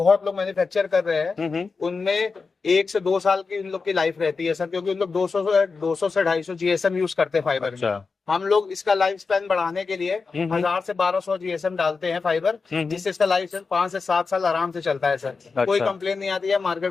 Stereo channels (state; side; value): quieter; right; 4.6 dB